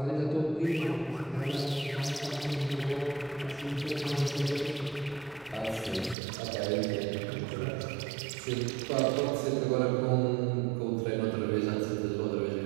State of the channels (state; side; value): drops out; left; at 6.2 s